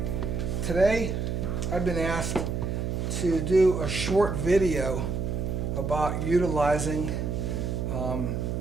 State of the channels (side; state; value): right; noise; hum, 2 dB below the sound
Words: Today I've been asked to do a short video about utilizing